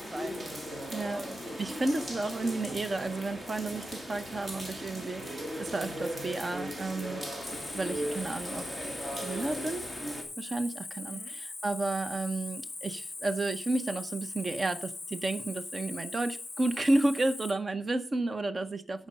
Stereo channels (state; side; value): normal; both; correlation 0.92